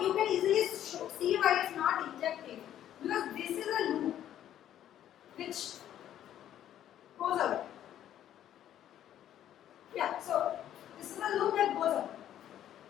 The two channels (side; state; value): right; quieter; 11.2 dB